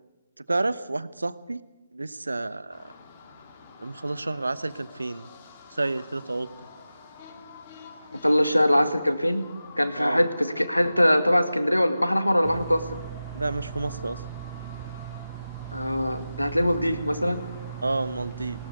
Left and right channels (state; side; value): inverted; both; correlation -0.94